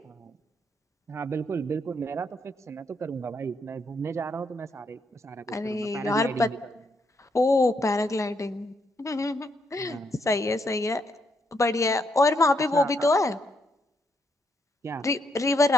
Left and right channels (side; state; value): both; normal; correlation 0.76